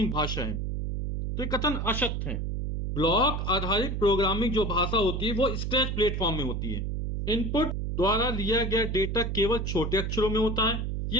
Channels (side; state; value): right; noise; hum, 2 dB below the sound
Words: भाषा है। तो ये कथन असत्य है। ब्लॉक आधारित प्रोग्रामिंग जो भाषा होती है वो स्क्रैच प्लेटफॉर्म में होती है। इनपुट द्वारा लिया गया डेटा केवल छोटे अक्षरों में होता है।